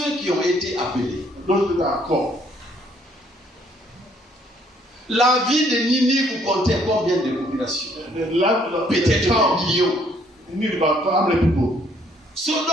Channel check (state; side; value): normal; both; correlation 0.65